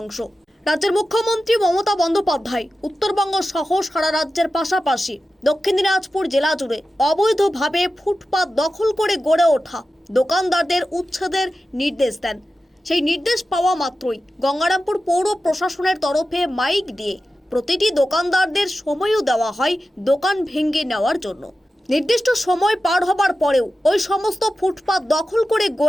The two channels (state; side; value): normal; both; correlation 0.93